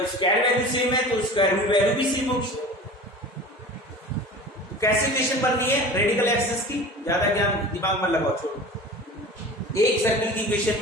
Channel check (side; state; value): both; normal; correlation 0.37